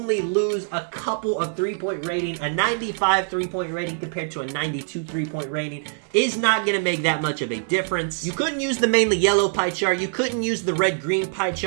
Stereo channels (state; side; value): silent; left; digital silence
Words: lose a couple of three-point rating? A 95 three-point rating compared to a 92 three-point rating is not going to make that much of a difference. You couldn't use the mainly yellow pie chart. You couldn't use the red-green pie